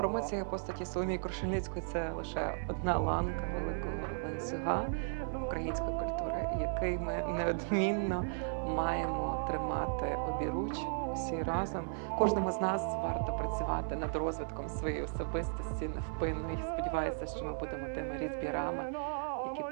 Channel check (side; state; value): left; silent; 54 dB below the other